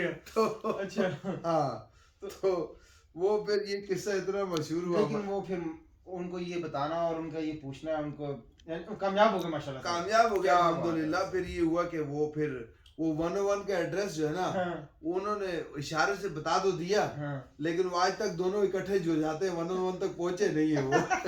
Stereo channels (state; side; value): identical; both; correlation 1.00